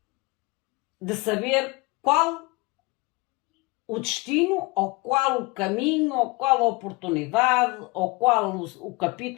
De saber qual o destino, ou qual o caminho, ou qual a oportunidade, ou qual o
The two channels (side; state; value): right; quieter; 25.0 dB